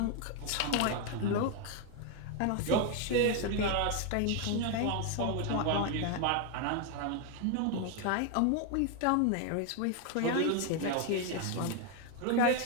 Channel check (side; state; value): both; different; correlation 0.01